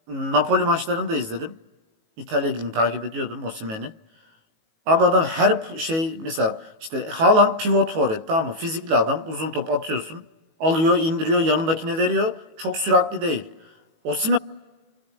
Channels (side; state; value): left; late; 18 ms